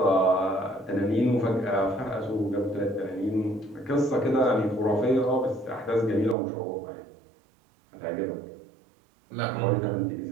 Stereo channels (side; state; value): left; drops out; at 6.4 s